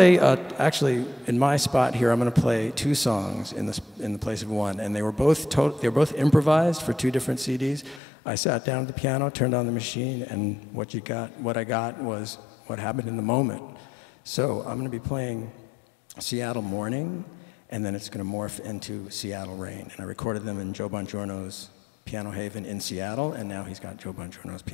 actually, in my spot here, I'm going to play 2 songs in the place of one. And they were both improvised for 2 different CDs. I sat down at the piano, turned on the machine, and what I got was what happened in the moment. So I'm going to be playing Seattle Morning, and then it's going to morph into Seattle Rain. And I recorded them in Joe Bongiorno's Piano Haven in Seattle, and now he's got Joe Bongiorno's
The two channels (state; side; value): drops out; right; at 8.0 s